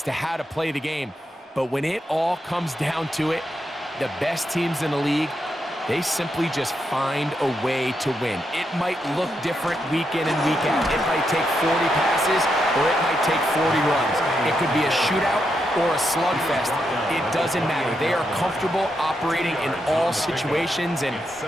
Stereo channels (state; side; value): normal; both; correlation 0.82